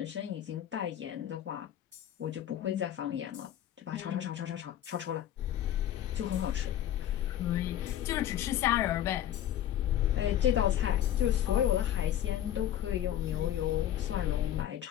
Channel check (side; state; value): right; quieter; 11.4 dB